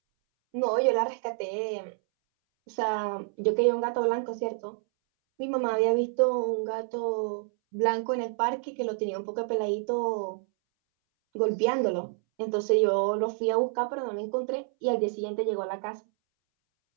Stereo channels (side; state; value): left; silent; 59 dB below the other